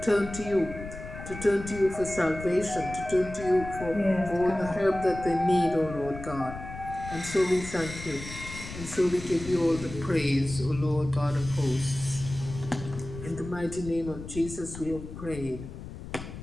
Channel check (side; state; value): left; noise; rumble, 11 dB below the sound